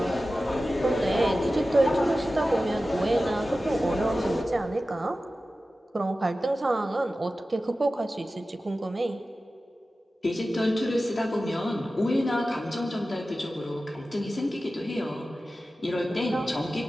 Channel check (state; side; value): normal; both; correlation 0.95